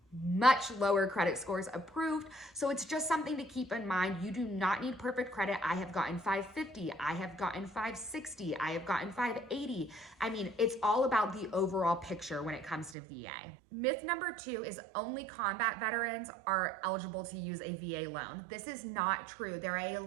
much lower credit scores approved. So it's just something to keep in mind. You do not need perfect credit. I have gotten 550. I have gotten 560. I have gotten 580. I mean, it's all about the overall picture when it comes to VA. Myth number two is only combat veterans are eligible to use a VA loan. This is not true. There are a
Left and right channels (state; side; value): drops out; left; at 13.0 s